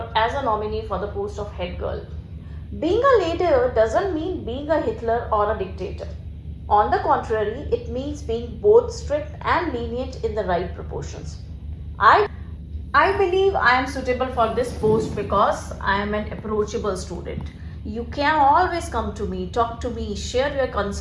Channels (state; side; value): identical; both; correlation 1.00